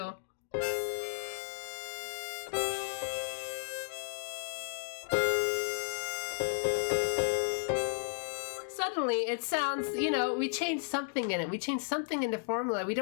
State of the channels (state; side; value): silent; right; digital silence